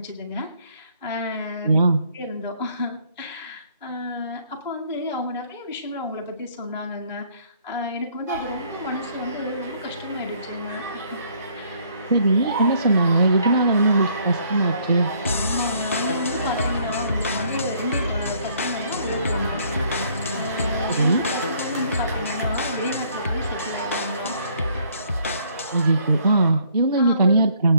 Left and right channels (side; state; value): both; inverted; correlation -0.64